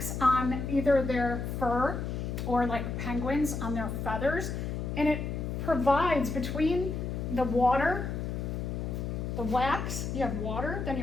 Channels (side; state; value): left; noise; hum, 3 dB below the sound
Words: on either their fur or like penguins on their feathers, and it provides between the water, the wax, you have water, then